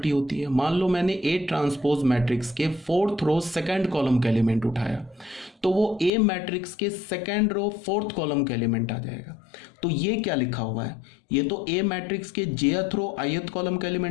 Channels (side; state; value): right; drops out; at 6.1 s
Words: होती है। मान लो मैंने ए ट्रांसपोज मैट्रिक्स के फोर्थ रो सेकंड कॉलम का एलिमेंट उठाया तो वो ए मैट्रिक्स के सेकंड रो फोर्थ कॉलम का एलिमेंट आ जाएगा। तो ये क्या लिखा हुआ है? ये तो ए मैट्रिक्स के jth रो ith कॉलम का